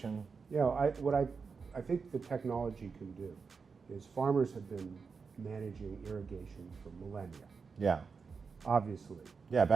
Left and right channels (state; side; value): quieter; left; 5.2 dB